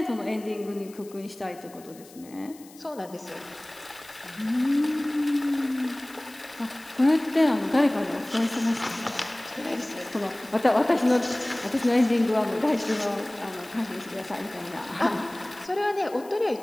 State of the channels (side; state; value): left; noise; hiss, 22 dB below the sound